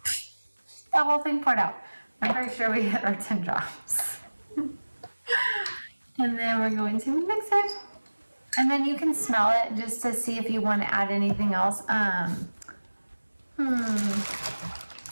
that whole thing poured out. I'm pretty sure we hit our 10 drops. And then we're going to mix it. And then you can smell it just to see if you want to add anything else.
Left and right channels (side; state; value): both; inverted; correlation -1.00